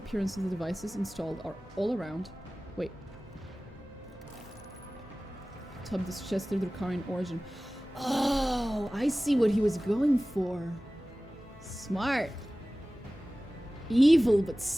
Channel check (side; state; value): both; normal; correlation 0.97